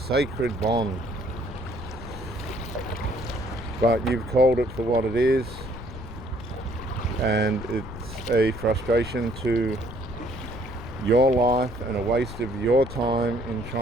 bond. But you've called it for what it is, and it's a frustration to your life and a waste of your time in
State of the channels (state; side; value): noise; left; rumble, 12 dB below the sound